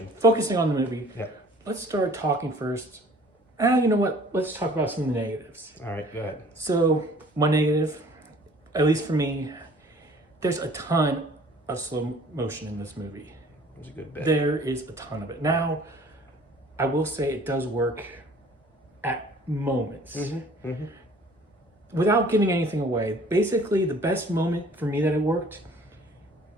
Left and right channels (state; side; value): normal; both; correlation 0.52